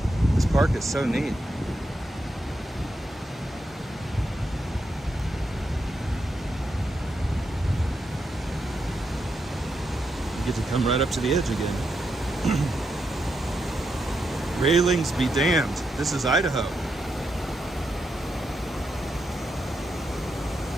This park is so neat. You get to come right up to the edge again. Railings be damned. This is Idaho.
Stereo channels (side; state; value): both; normal; correlation 0.83